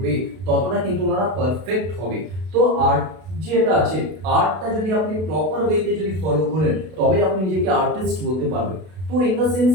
ততটা কিন্তু ওনারা পারফেক্ট হবে। তো আর্ট যেটা আছে, আর্টটা যদি আপনি প্রপার ওয়েতে যদি ফলো করেন তবে আপনি নিজেকে আর্টিস্ট বলতে পারবেন। তো ইন দ্য সেন্স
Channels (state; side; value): late; left; 32 ms